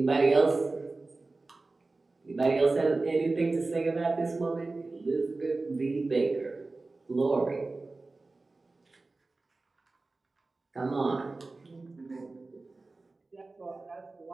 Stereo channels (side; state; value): left; quieter; 3.5 dB